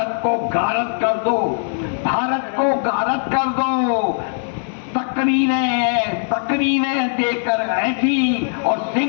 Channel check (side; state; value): right; silent; 66 dB below the other